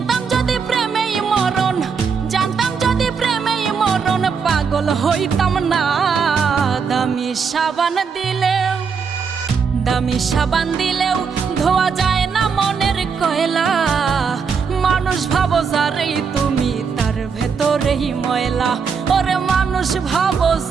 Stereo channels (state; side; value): quieter; left; 5.9 dB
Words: যদি প্রেমেই মরণ, জানতাম যদি প্রেমেই মরণ, পাগল হইতাম না। দামি সাবান দিলেও, দামি সাবান দিলেও ধোয়া যায় না মনের কয়লা। মানুষ ভাবো যারেই তুমি তার ভেতরেই ময়লা। ওরে মানুষ ভাবো